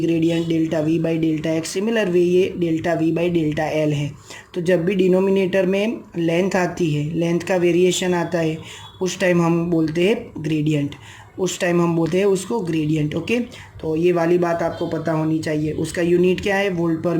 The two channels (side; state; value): both; identical; correlation 1.00